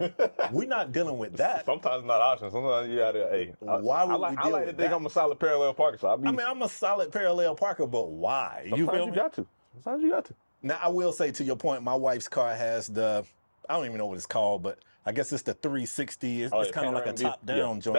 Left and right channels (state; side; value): inverted; both; correlation -1.00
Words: We're not dealing with that. Sometimes it's not an option. Sometimes you gotta, why would we deal with that? I like to think I'm a solid parallel parker. So I'm a solid parallel parker, but why? You feel me? Sometimes you got to. Now, I will say, to your point, my wife's car has I don't even know what it's called, but I guess it's the 360. It's kind of like a top-down joint.